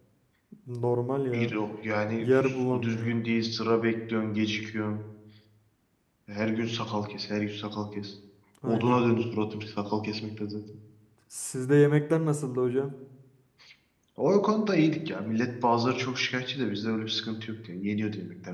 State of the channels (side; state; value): both; identical; correlation 1.00